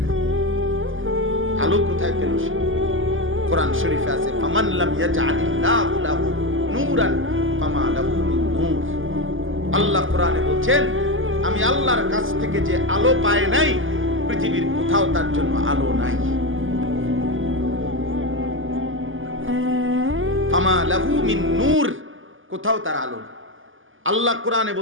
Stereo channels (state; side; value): late; left; 0.58 ms